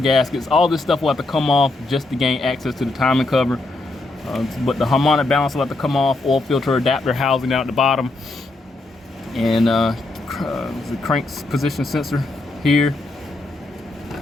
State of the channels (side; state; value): right; quieter; 3.0 dB